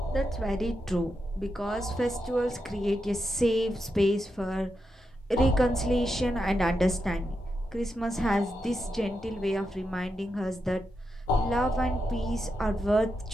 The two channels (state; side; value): normal; both; correlation 0.86